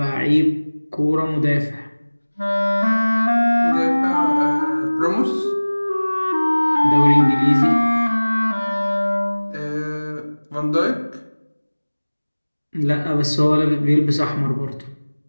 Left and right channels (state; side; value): inverted; both; correlation -1.00